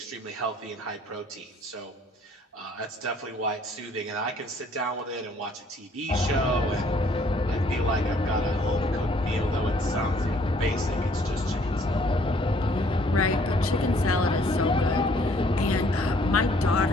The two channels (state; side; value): normal; both; correlation 0.61